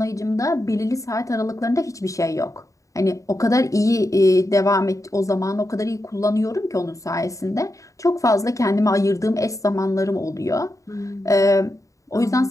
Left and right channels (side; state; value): right; late; 0.16 ms